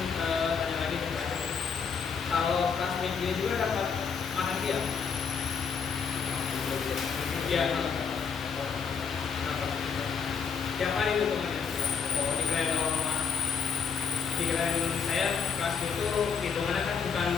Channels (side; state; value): right; quieter; 6.3 dB